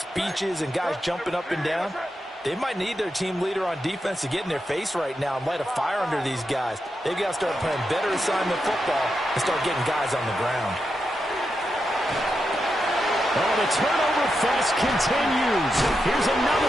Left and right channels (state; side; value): normal; both; correlation 0.86